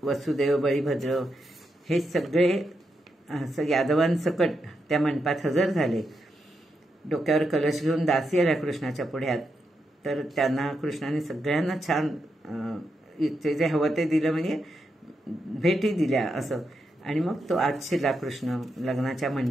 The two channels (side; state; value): both; normal; correlation 0.84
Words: वसुदेव बळीभद्र हे सगळे यादवांसकट त्या मंडपात हजर झाले. डोक्यावर कलश घेऊन दासी आल्या कृष्णाच्या पुढ्यात. तर त्यांना कृष्णाने सगळ्यांना छान ते जे हवं ते दिलं, म्हणजे भेटी दिल्या असं. आणि मग तो आत शिरला कृष्ण लग्नाच्या